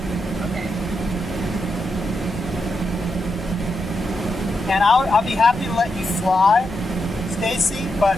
Okay. And I'll be happy to let you fly, Stacy, but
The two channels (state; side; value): normal; both; correlation 0.84